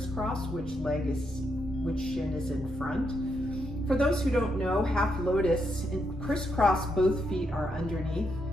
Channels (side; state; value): both; normal; correlation 0.80